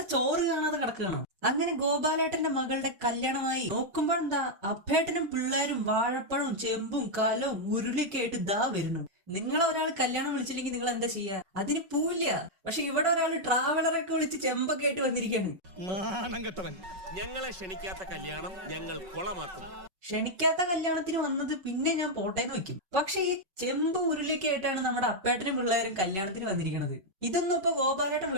ചോറ് കാണാതെ കിടക്കുകയാണോ? അങ്ങനെ ഗോപാലേട്ടന്റെ മകളുടെ കല്യാണമായി നോക്കുമ്പോഴെന്താ അപ്പേട്ടനും പിള്ളേരും വാഴപ്പഴവും ചെമ്പും കലവും ഉരുളിയൊക്കെ ആയിട്ട് ദാ വരുന്നു. നിങ്ങളെ ഒരാൾ കല്യാണം വിളിച്ചില്ലെങ്കിൽ നിങ്ങൾ എന്താ ചെയ്യാ? അതിന് പൂവില്ല. പക്ഷെ ഇവിടെ ഒരാൾ ട്രാവലറൊക്കെ വിളിച്ച് ചെമ്പൊക്കെ ആയിട്ട് വന്നിരിക്കാണ്. ഞങ്ങളെ ക്ഷണിക്കാത്ത കല്യാണം ഞങ്ങൾ കൊളമാക്കും. ക്ഷണിക്കാത്ത കല്യാണത്തിന് വന്നത് പിന്നെ ഞാൻ പോട്ടേന്ന് വെക്കും. പക്ഷെ ഈ ചെമ്പ് ഉരുളിയൊക്കെ ആയിട്ടാണ് നമ്മുടെ അപ്പേട്ടനും പിള്ളേരും കല്യാണത്തിന് വന്നിരിക്കുന്നത്. ഇതൊന്നും ഇപ്പൊ ഗോപാലേട്ടൻ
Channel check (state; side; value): late; left; 5.3 ms